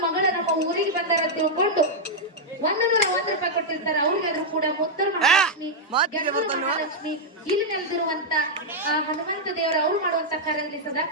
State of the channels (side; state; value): both; normal; correlation -0.04